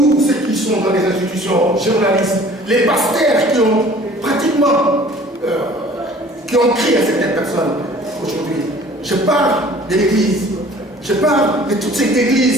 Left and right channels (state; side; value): normal; both; correlation 0.50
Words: ceux qui sont dans les institutions, journalistes, les pasteurs qui ont pratiquement qui ont créé à certaines personnes aujourd'hui. Je parle de l'Église. Je parle de toutes ces